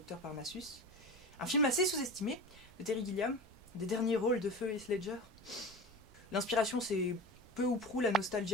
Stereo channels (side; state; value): both; normal; correlation 0.31